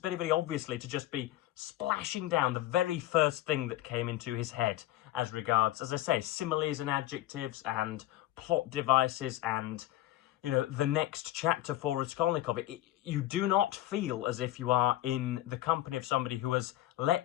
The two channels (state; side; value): quieter; right; 15.0 dB